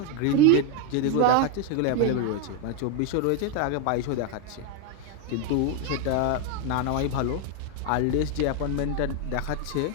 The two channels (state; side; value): different; both; correlation 0.01